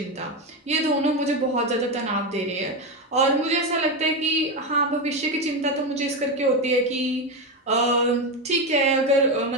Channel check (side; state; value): both; normal; correlation 0.13